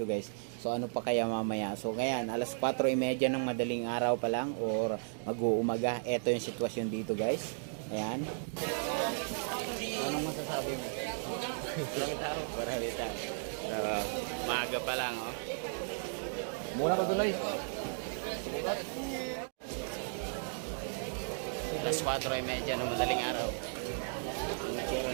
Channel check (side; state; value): left; silent; digital silence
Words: guys. So ano pa kaya mamaya? So ngayon, alas 4:30 ng madaling araw pa lang or mag-uumaga. Ito yung sitwasyon dito guys. Ayan. Anong masasabi mo? Marami tao. Maaga pa lang oh. Muna ka tuloy. Alas 4:30 ng madaling araw.